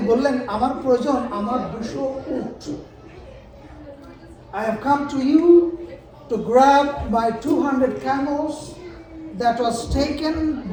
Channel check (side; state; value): both; identical; correlation 1.00